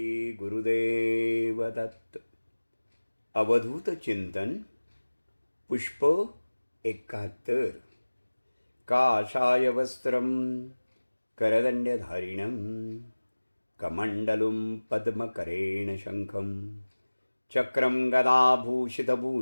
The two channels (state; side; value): inverted; both; correlation -1.00